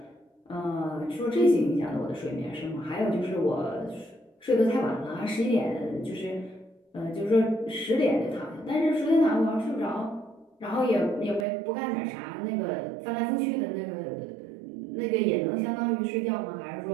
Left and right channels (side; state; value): left; drops out; at 11.5 s